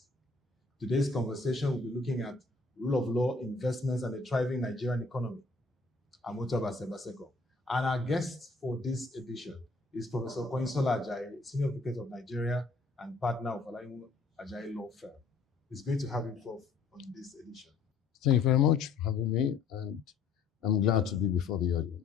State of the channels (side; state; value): right; quieter; 4.2 dB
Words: Today's conversation will be looking at rule of law, investments and the thriving Nigerian economy. I'm Otobase Baseko. And our guest for this edition is Professor Konyinsola Ajayi, Senior Advocate of Nigeria and partner of Olaniwu Ajayi Law Firm. It's great to have you both on this edition. Thank you very much for having me, and I'm glad to be before the